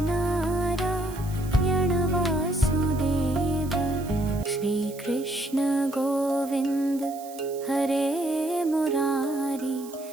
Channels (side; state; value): right; noise; hiss, 19 dB below the sound